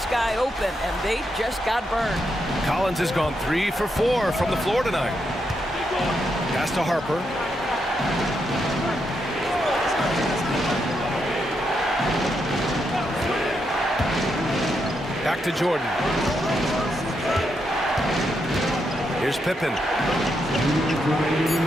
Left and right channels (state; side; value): normal; both; correlation 0.81